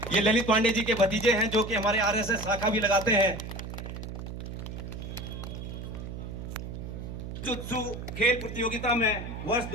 ये ललित पांडे जी के भतीजे हैं जो कि हमारे आरएसएस शाखा भी लगाते हैं। जुत्सु खेल प्रतियोगिता में वर्ष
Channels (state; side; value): noise; right; hum, 8 dB below the sound